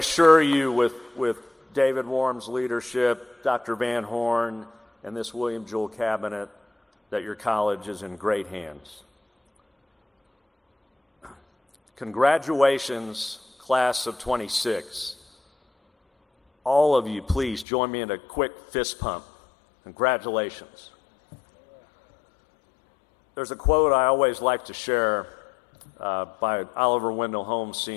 you with David Warren's leadership, Dr. Van Horn, and this William Jewell cabinet, that your college is in great hands. Congratulations, class of 26. All of you, please join me in a quick fist pump. Congratulations. There's a quote I always like to share by Oliver Wendell Holmes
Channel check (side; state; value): right; drops out; at 17.7 s